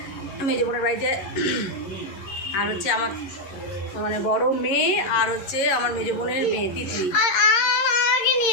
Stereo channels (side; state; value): right; late; 11 ms